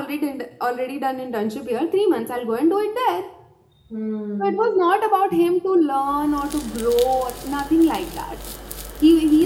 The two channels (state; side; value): identical; both; correlation 1.00